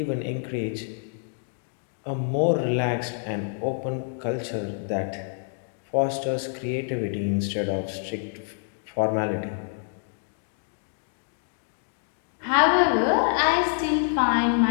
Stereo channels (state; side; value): silent; right; digital silence